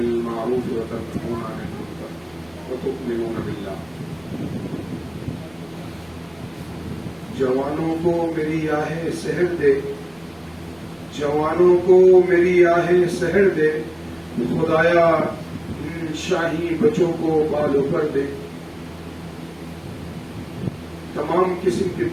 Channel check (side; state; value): right; noise; rumble, 30 dB below the sound